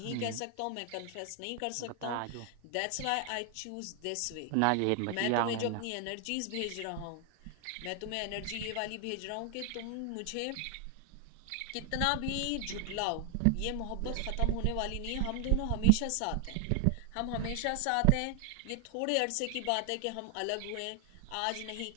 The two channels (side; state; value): both; different; correlation 0.00